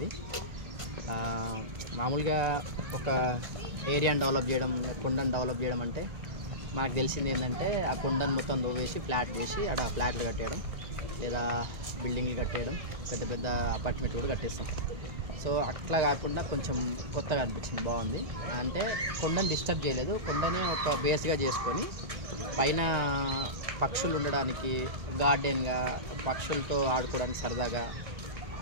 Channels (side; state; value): left; late; 1.9 ms